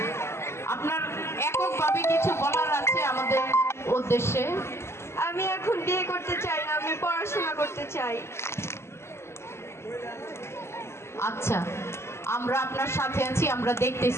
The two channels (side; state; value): right; late; 0.13 ms